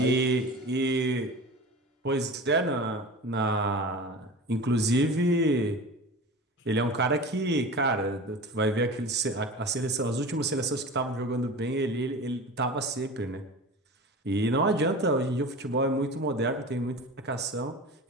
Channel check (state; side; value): normal; both; correlation 0.34